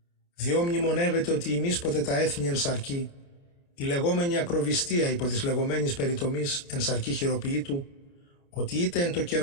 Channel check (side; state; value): right; late; 29 ms